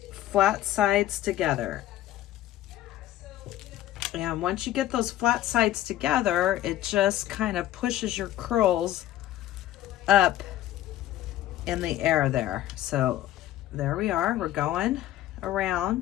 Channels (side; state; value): right; quieter; 13.6 dB